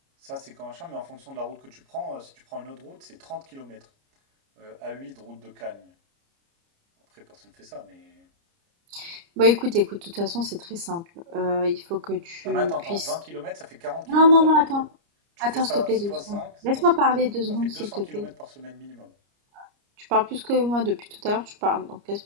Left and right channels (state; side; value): late; left; 29 ms